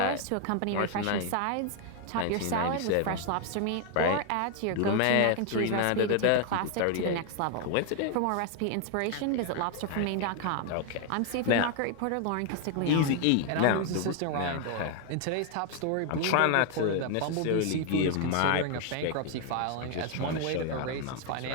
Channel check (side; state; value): both; different; correlation 0.00